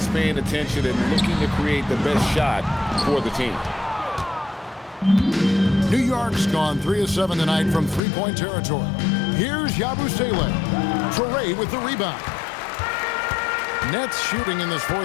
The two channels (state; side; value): drops out; right; at 8.0 s